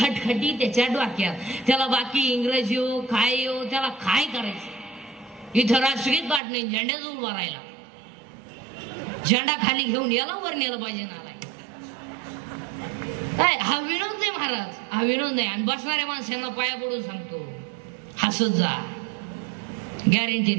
त्याच्या डोक्यात. त्याला बाकी इंग्रजी हो काय हो त्याला काय करायचं? इथं राष्ट्रगीत पाठ नाही, झेंड्याजवळ उभा राहिला, झेंडा खाली घेऊन याला वर नेलं पाहिजे ना. काय हा विनोद नाही महाराज, हा विनोद नाही. आणि बसणाऱ्या माणसांना पाया पडून सांगतो, हसत जा, गॅरंटी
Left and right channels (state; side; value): drops out; left; at 6.4 s